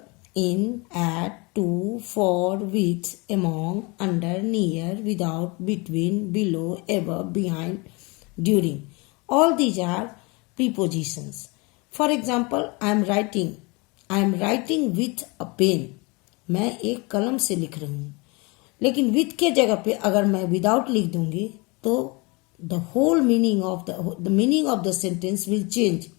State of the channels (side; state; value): right; quieter; 27.8 dB